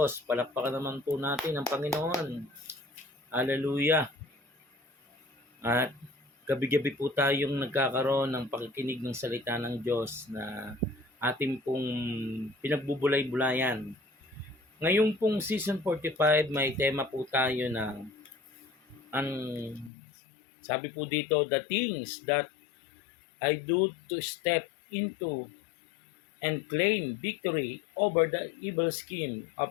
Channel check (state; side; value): drops out; right; at 19.9 s